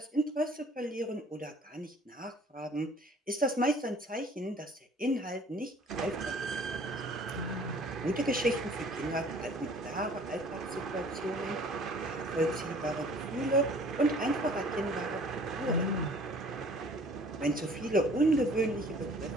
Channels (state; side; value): normal; both; correlation 0.52